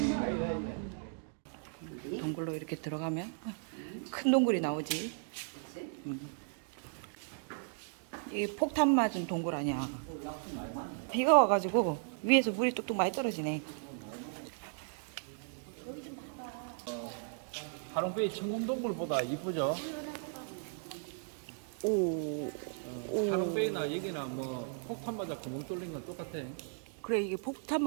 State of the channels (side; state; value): left; silent; digital silence